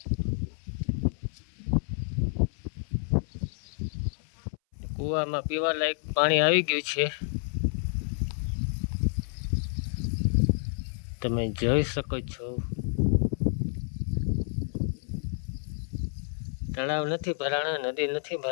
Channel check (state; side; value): silent; right; 58 dB below the other